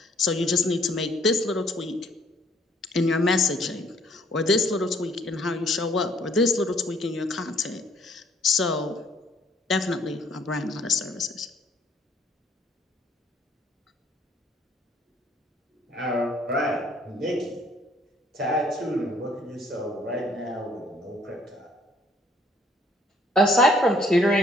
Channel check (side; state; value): both; normal; correlation 0.62